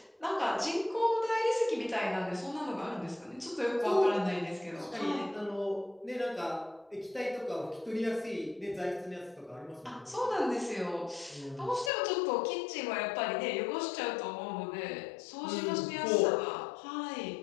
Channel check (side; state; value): right; drops out; at 11.9 s